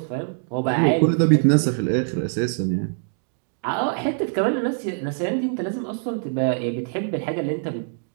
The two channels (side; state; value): left; silent; digital silence